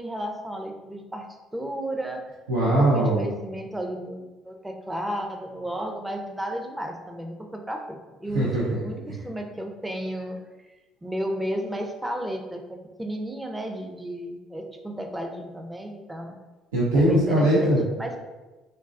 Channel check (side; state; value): both; normal; correlation 0.65